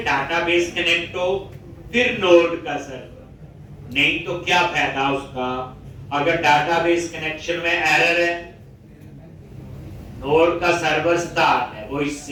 डाटाबेस कनेक्ट हो फिर नोड का सर्वर नहीं तो क्या फायदा उसका अगर डाटाबेस कनेक्शन में एरर है नोड का सर्वर स्टार्ट है वो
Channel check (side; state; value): both; identical; correlation 1.00